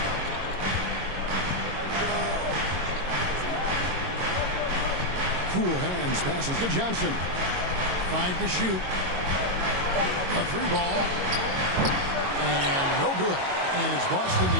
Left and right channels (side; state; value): left; late; 22 ms